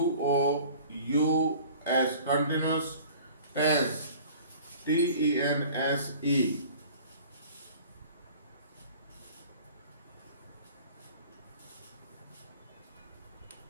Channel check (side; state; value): both; inverted; correlation -0.46